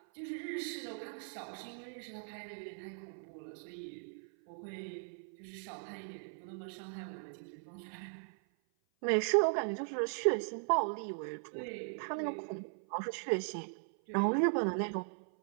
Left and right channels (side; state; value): left; silent; 52 dB below the other